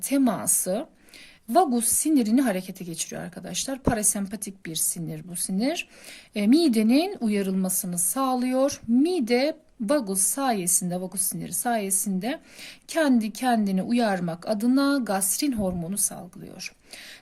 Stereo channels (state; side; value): identical; both; correlation 1.00